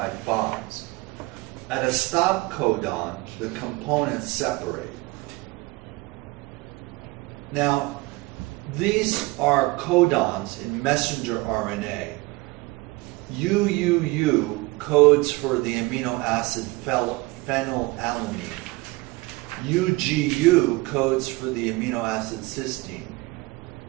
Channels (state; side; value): quieter; left; 22.8 dB